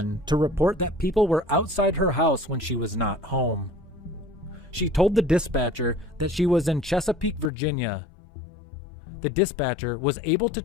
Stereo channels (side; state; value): right; drops out; at 7.5 s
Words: to report that people were outside her house when she was not home. She told the dispatcher that she was in Chesapeake, Virginia. The dispatcher was able to